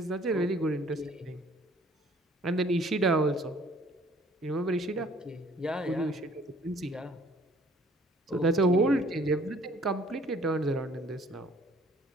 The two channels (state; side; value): normal; both; correlation 0.57